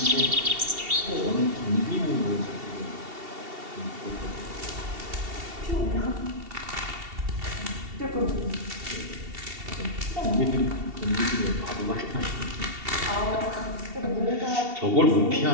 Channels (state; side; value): late; left; 2.7 ms